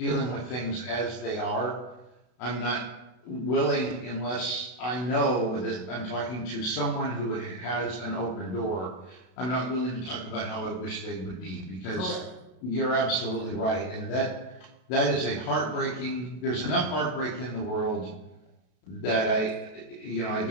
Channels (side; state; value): right; late; 32 ms